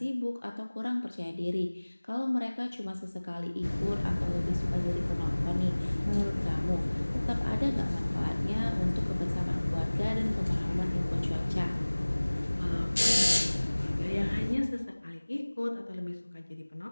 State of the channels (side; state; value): both; inverted; correlation -1.00